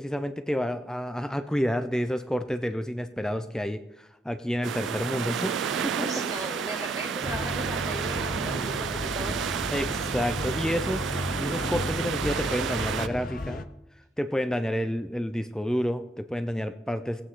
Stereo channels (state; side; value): normal; both; correlation 0.75